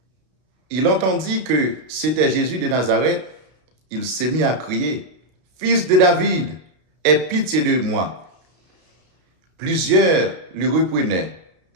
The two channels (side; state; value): left; late; 32 ms